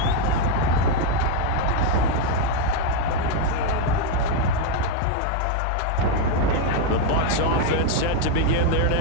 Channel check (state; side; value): different; both; correlation 0.01